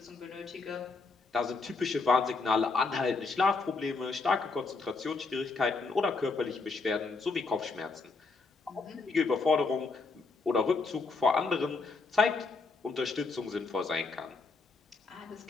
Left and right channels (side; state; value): right; quieter; 4.1 dB